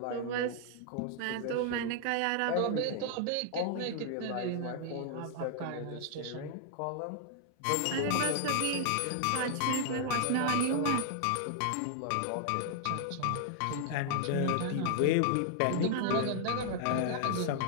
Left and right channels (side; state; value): both; different; correlation 0.00